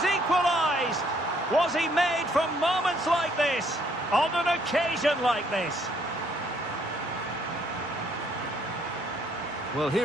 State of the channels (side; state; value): both; normal; correlation 0.67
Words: equalised! Was he made from moments like this? On an occasion like this? Well,